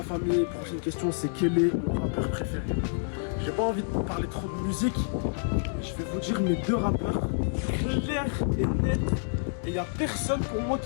famille, prochaine question c'est quel est mon rappeur préféré? J'ai pas envie de parler trop de musique, je vais vous dire mes deux rappeurs clair et net, et il y a personne pour moi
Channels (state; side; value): silent; right; digital silence